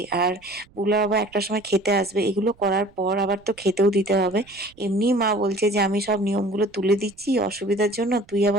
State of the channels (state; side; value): noise; right; rumble, 29 dB below the sound